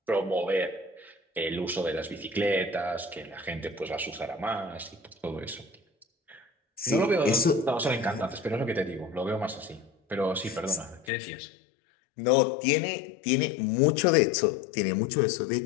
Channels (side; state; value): right; drops out; at 11.1 s